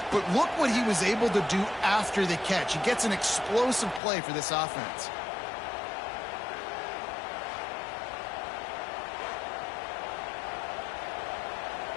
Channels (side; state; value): right; drops out; at 4.0 s